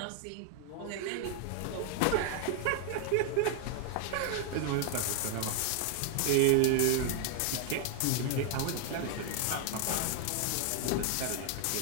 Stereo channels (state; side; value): different; both; correlation 0.00